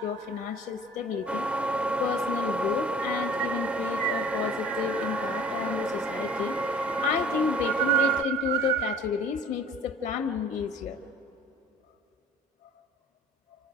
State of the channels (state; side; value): normal; both; correlation 0.49